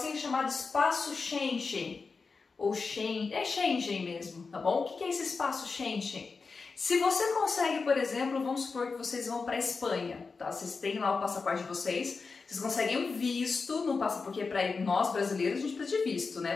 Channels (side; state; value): right; quieter; 4.6 dB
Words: chamado espaço Schengen, ou Schengen mesmo, tá bom? O que é esse espaço Schengen? Se você consegue, por exemplo, vamos supor que vocês vão para a Espanha, tá? Vocês têm lá o passaporte de vocês conseguem um visto, não passa porque para nós brasileiros a gente precisa de visto,